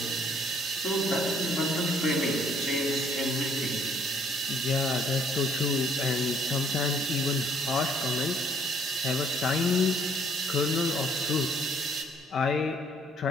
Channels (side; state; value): both; normal; correlation 0.63